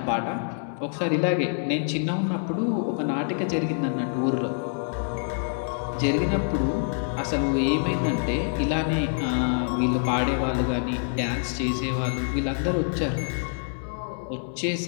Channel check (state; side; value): silent; right; 61 dB below the other